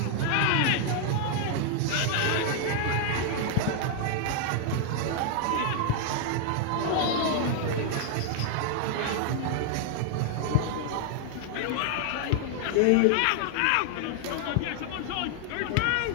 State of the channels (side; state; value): both; different; correlation 0.00